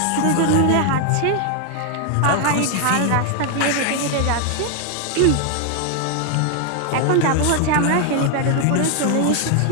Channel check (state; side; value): different; both; correlation 0.00